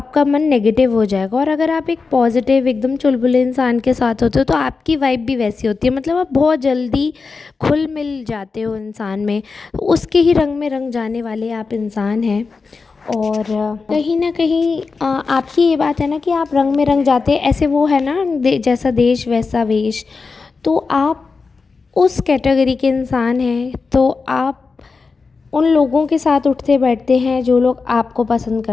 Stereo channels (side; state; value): right; quieter; 4.5 dB